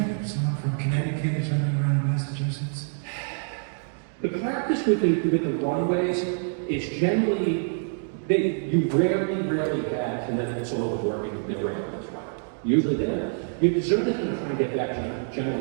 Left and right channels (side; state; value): left; silent; 61 dB below the other